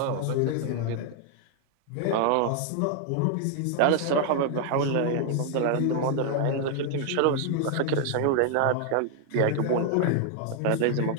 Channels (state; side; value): different; both; correlation 0.00